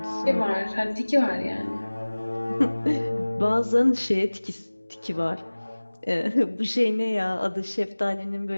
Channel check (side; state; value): both; inverted; correlation -1.00